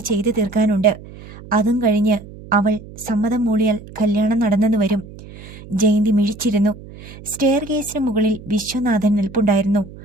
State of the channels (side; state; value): right; noise; hum, 17 dB below the sound